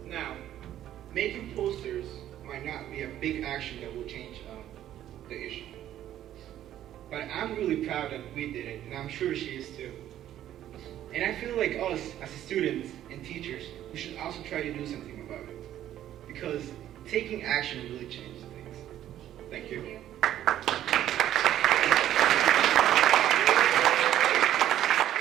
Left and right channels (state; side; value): quieter; left; 12.0 dB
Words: Now, making posters might not be a big action that will change the issue. But I'm really proud that we did it, and I'm sure she is too. And I feel like us, as students and teachers, we should also try to do something about it. Because taking action really changes things. Thank you. Thank you.